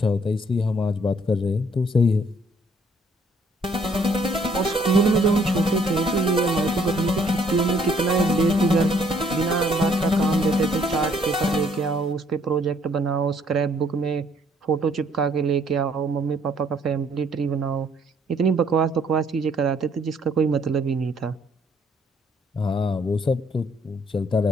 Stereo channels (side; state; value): both; normal; correlation 0.64